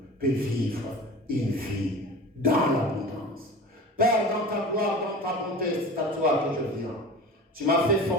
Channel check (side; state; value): both; normal; correlation 0.36